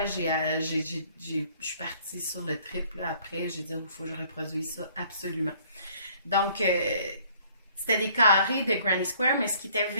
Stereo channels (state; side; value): inverted; both; correlation -0.58